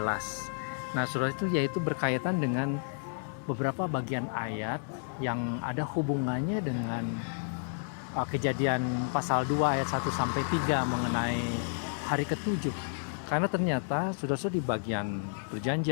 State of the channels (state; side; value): silent; right; digital silence